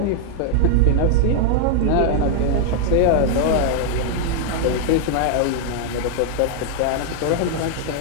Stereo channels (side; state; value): both; different; correlation 0.00